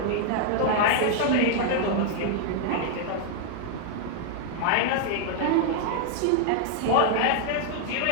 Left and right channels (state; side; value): different; both; correlation 0.00